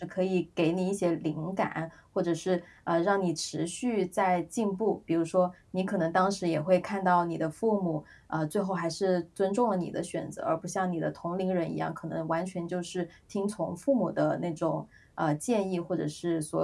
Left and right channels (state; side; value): identical; both; correlation 1.00